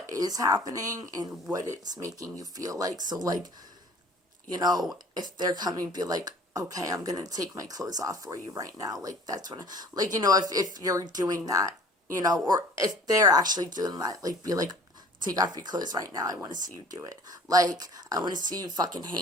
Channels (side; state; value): both; normal; correlation 0.48